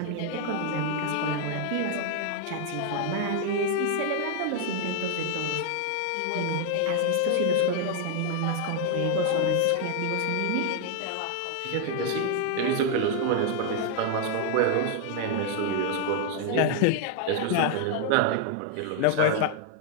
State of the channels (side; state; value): both; different; correlation 0.00